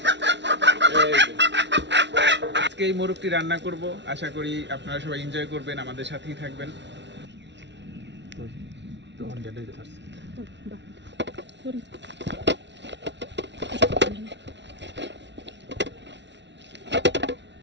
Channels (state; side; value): late; left; 0.51 ms